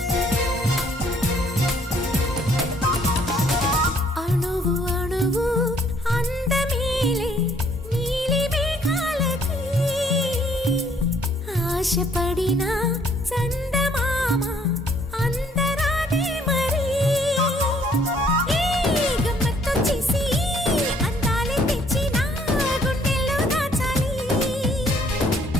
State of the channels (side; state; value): both; normal; correlation 0.64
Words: అణువు అణువు అందమేలే నీలి మేఘాలకి, ఆశపడిన చందమామ అందరాదే మరి. ఈ గమ్మత్తొచ్చేసి అందాలే తెచ్చి నా గుండెల్లో దాచాలి,